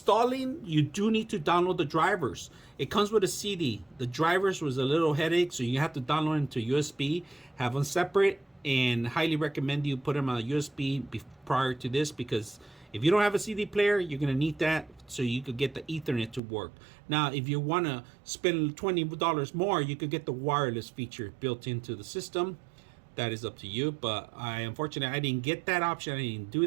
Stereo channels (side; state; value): left; drops out; at 16.4 s